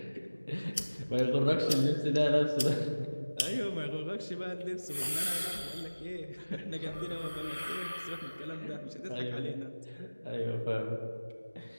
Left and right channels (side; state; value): both; inverted; correlation -1.00